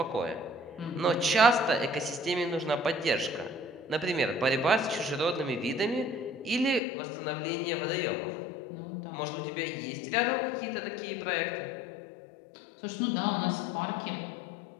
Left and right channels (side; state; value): right; drops out; at 6.8 s